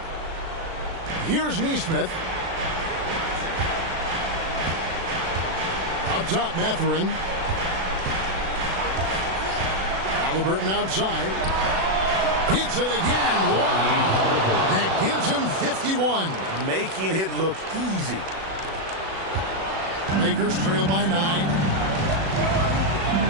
Here's Neesmith. Up top, Mathurin. Halliburton outside. Hits it again. Wow. That gives him 51. Making it look easy. Lakers trail by 9.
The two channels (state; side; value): late; left; 36 ms